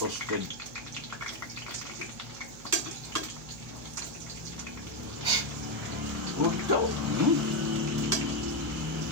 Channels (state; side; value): noise; right; hum, 18 dB below the sound